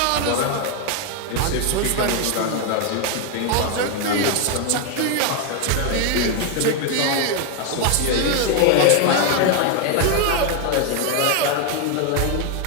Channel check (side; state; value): both; different; correlation 0.01